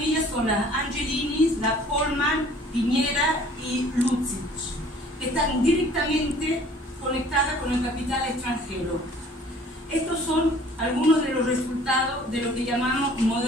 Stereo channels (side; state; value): both; normal; correlation 0.53